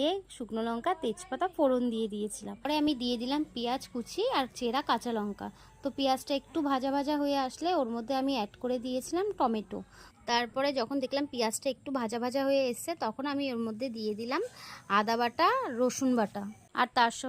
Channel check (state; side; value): identical; both; correlation 1.00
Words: শুকনো লঙ্কা, তেজপাতা ফোড়ন দিয়ে দিয়েছিলাম। পরে আমি দিয়ে দিলাম পেঁয়াজ কুচি আর চেরা কাঁচা লঙ্কা। তো পেঁয়াজটা একটু ভাজা ভাজা হয়ে আসলে ওর মধ্যে আমি অ্যাড করে দিয়েছিলাম টমেটো। তারপরে যখন দেখলাম পেঁয়াজটা একটু ভাজা ভাজা হয়ে এসছে, তখন আমি ওর মধ্যে দিয়ে দিলাম আদা বাটা, রসুন বাটা, আর তার